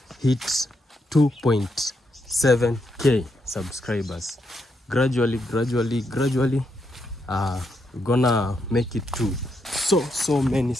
hit 2.7k subscribers. Gradually, we're gonna make it to so many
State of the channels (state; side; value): normal; both; correlation 0.80